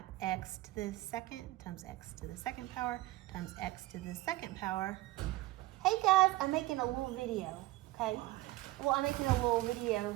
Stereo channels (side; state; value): left; quieter; 18.5 dB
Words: x to the 2nd times x to the 2nd power times x to the 2nd power. Hey guys, I'm making a little video, okay? Well, I'm making a little